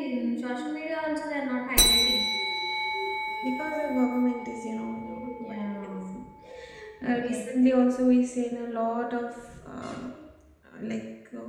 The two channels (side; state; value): both; identical; correlation 1.00